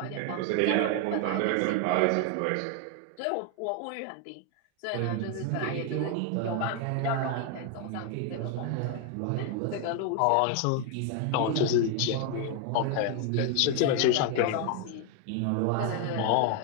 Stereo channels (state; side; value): different; both; correlation 0.01